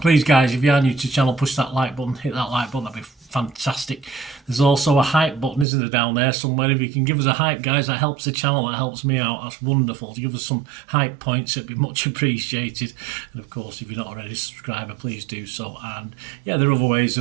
guys, if you are new to the channel, push that like button, hit that like button, that'd be fantastic. There's also a hype button, isn't there, down there somewhere? If you can give us a hype, guys, that helps the channel, that helps me out. That's wonderful. To give us some hype points, it'd be much appreciated. And of course, if you're not already a subscriber, please do so. And yeah, there are other ways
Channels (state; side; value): drops out; left; at 5.7 s